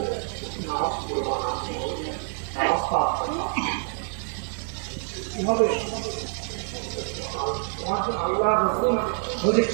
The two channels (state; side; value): silent; left; 60 dB below the other